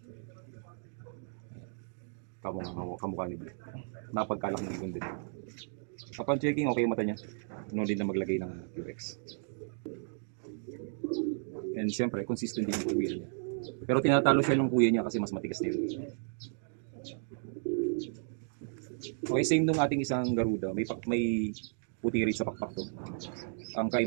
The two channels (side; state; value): left; silent; digital silence